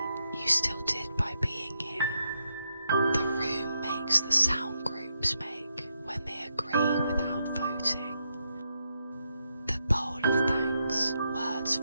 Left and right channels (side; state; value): both; inverted; correlation -0.82